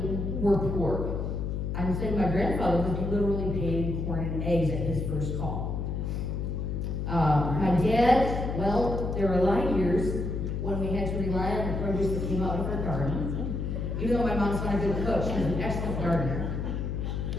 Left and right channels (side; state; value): left; noise; hum, 2 dB below the sound